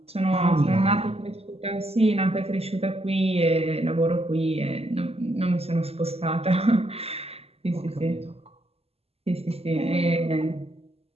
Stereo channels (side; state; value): left; late; 0.29 ms